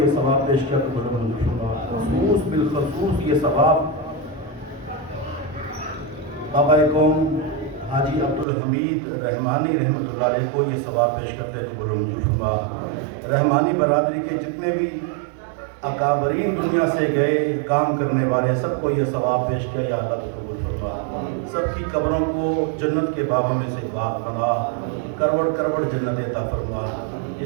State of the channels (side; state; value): left; drops out; at 8.5 s